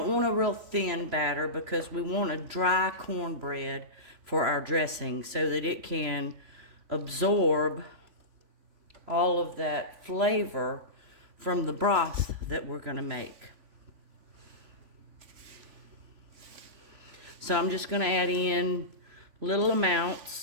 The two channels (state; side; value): late; left; 3.0 ms